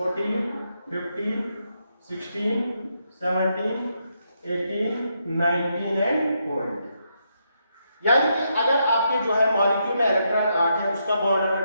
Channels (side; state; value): both; inverted; correlation -0.80